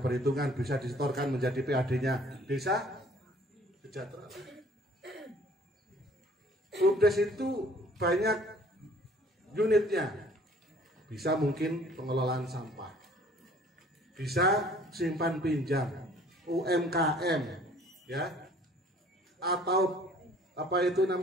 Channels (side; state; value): both; normal; correlation 0.54